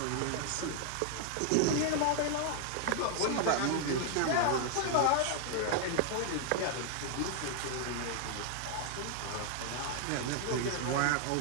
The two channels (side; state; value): both; different; correlation 0.00